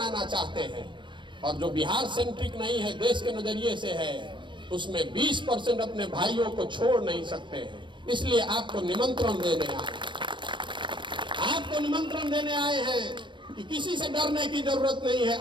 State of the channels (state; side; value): late; left; 0.23 ms